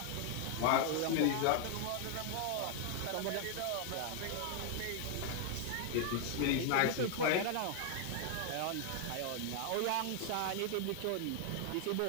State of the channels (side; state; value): both; different; correlation 0.00